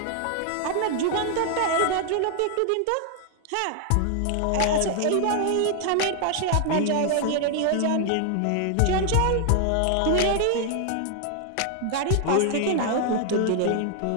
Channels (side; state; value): both; different; correlation 0.00